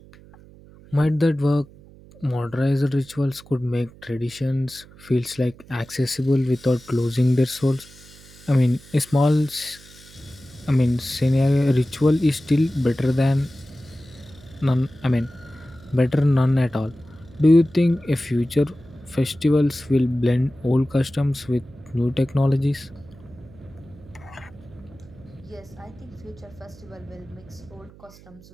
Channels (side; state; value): right; noise; hum, 22 dB below the sound